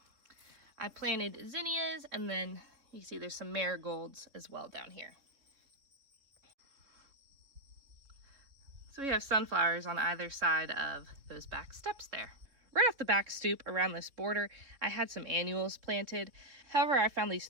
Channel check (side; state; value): left; late; 3.6 ms